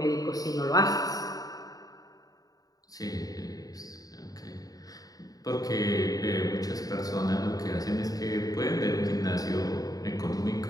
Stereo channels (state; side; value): late; right; 0.18 ms